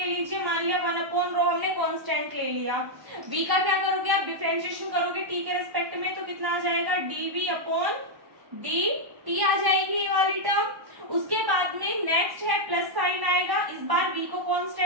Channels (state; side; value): late; left; 1.0 ms